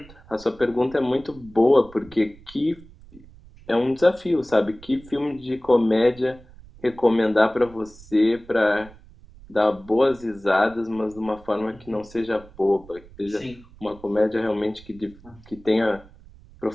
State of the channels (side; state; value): right; noise; rumble, 22 dB below the sound